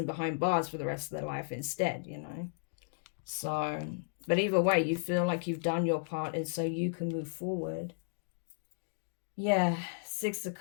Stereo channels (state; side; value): silent; right; digital silence